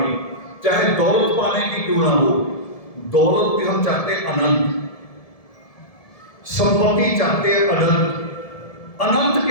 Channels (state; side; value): late; right; 1.7 ms